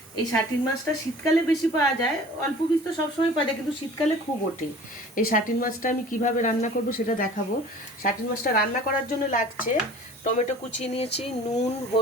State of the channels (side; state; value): both; normal; correlation 0.45